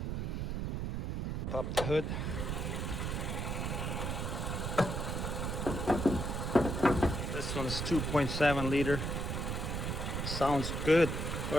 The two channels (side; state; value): right; noise; rumble, 2 dB below the sound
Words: Pop the hood. This one's 2.7 liter. Sounds good.